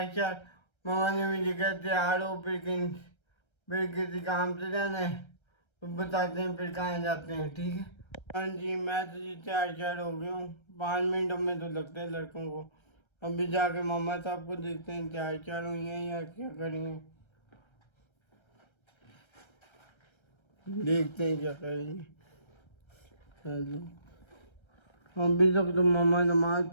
मामा ने मुझे कहा तैयार हो, फिर किसी काम से जाना है तो बताते हैं फिर कहाँ जाते हैं। ठीक है। हाँ जी, मैं तो जी तैयार हो गया हूँ। 5 मिनट में तो लगते हैं लड़कों को। अभी जाके मामा साहब को देखते हैं तैयार हुई हैं या क्या करेंगे, देखते हैं क्या करेंगे। हेलो, अभी तक तो मामा नमाज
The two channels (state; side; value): late; right; 1.3 ms